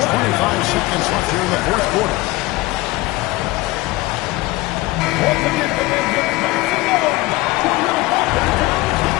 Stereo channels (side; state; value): right; quieter; 19.8 dB